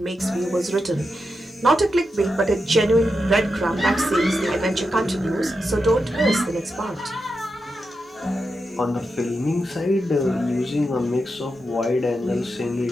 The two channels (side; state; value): both; normal; correlation 0.87